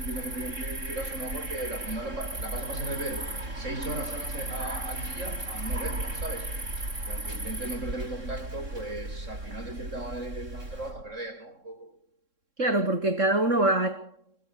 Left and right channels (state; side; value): late; left; 3.7 ms